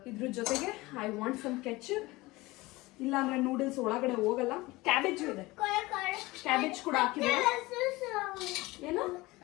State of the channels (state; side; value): quieter; right; 20.9 dB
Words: ಇದ್ರ ಜೊತೆಗೆ ಐ ವಾಂಟ್ ಸಮ್ ಕೆಚಪ್, ಇಲ್ಲ ಅಂದ್ರೆ ನೂಡಲ್ಸ್ ಒಳಗಡೆ ಹೋಗಲ್ಲ. ಕ್ಯಾಬೇಜ್ ಇದೆ, ಕ್ಯಾಬೇಜ್ ಕೂಡ ಹಾಕಿದೆ. ಏನು